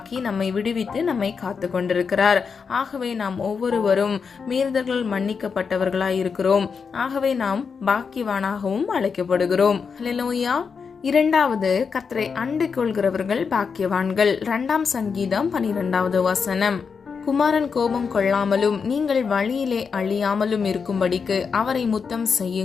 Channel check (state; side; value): quieter; right; 5.7 dB